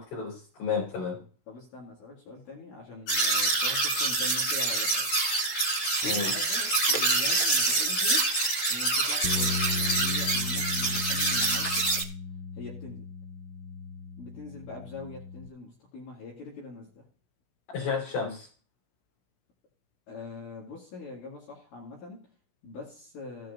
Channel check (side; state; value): right; late; 16 ms